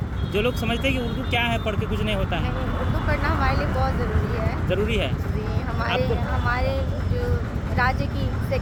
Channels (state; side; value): identical; both; correlation 1.00